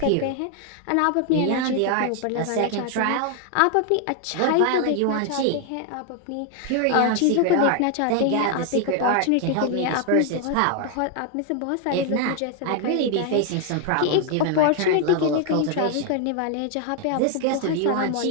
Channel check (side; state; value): both; different; correlation 0.00